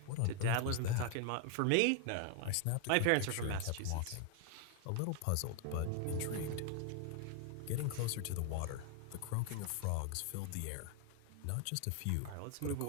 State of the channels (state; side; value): different; both; correlation 0.00